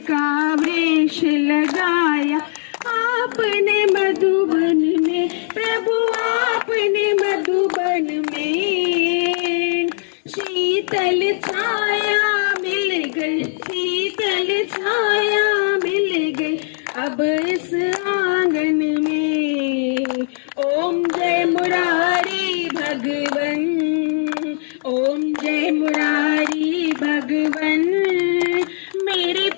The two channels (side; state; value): right; silent; digital silence